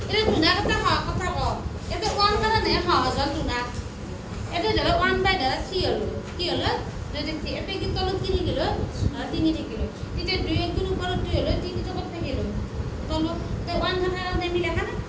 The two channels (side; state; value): both; identical; correlation 1.00